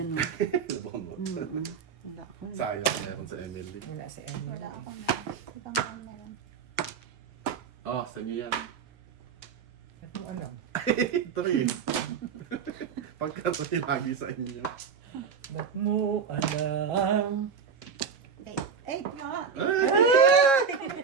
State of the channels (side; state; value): left; quieter; 6.2 dB